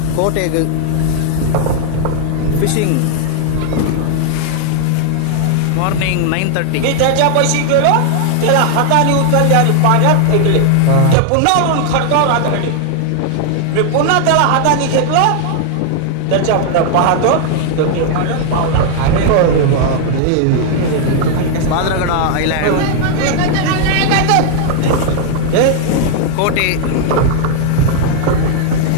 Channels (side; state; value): both; different; correlation 0.00